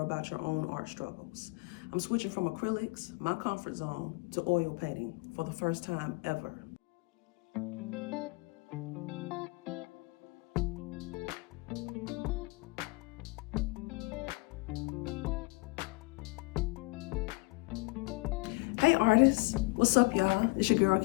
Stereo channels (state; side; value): quieter; right; 26.8 dB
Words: your own art struggles. I'm switching from acrylics, my comfort zone, to oil painting for the first time ever. Hey artists, what's up y'all? It's your girl